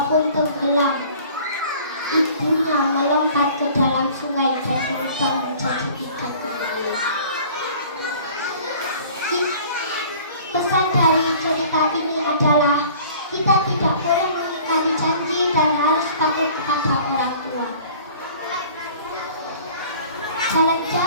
pun tenggelam. Ibunya melompat ke dalam sungai dan berubah menjadi ikan menangis. Pesan dari cerita ini adalah kita tidak boleh mengingkari janji dan harus patuh kepada orang tua.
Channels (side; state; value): both; inverted; correlation -0.48